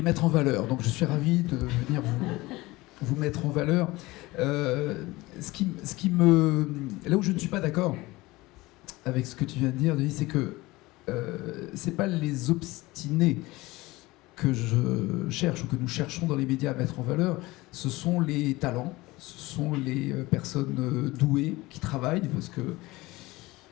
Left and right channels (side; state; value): right; quieter; 20.5 dB